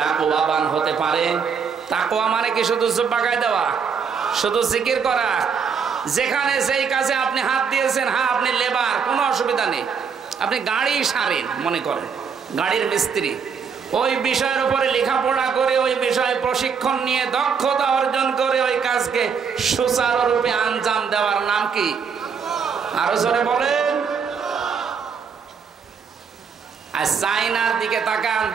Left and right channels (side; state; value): left; quieter; 6.3 dB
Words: হতে পারে, তাকওয়া মানে কি শুধু জুব্বা গায়ে দেওয়া, শুধু জিকির করা? যেখানে যেই কাজে আপনি হাত দিয়েছেন, হ্যাঁ আপনি লেবার, কোনো অসুবিধা নেই, আপনি গাড়ি সারেন, মনে করেন গাড়ির মিস্ত্রি, ওই বিষয়ের উপরে লেখাপড়া করে ওই বিষয়ে প্রশিক্ষণ নিয়ে দক্ষতা অর্জন করে ওই কাজকে সুচারুরূপে আঞ্জাম দেওয়ার নাম কি? আরো জোরে বলেন। আর চাইনার দিকে তাকান,